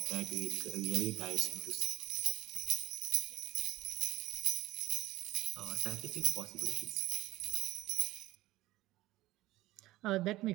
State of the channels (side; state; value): left; quieter; 17.1 dB